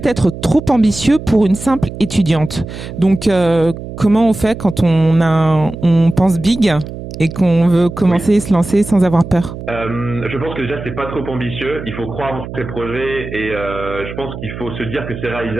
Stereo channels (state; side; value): noise; right; hum, 10 dB below the sound